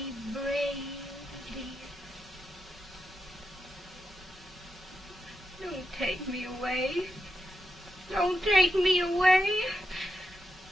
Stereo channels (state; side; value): normal; both; correlation 0.87